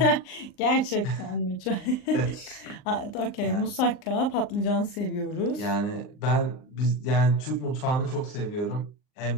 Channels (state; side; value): late; right; 39 ms